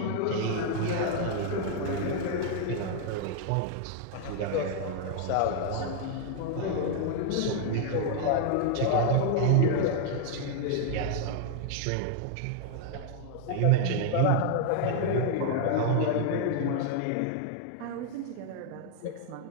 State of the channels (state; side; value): different; both; correlation 0.00